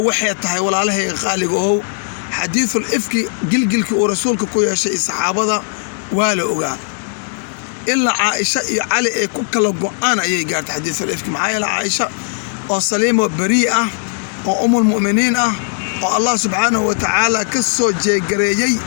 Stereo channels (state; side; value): silent; right; 60 dB below the other